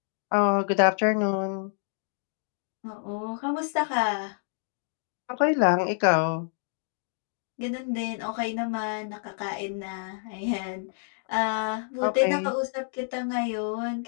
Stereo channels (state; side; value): silent; right; digital silence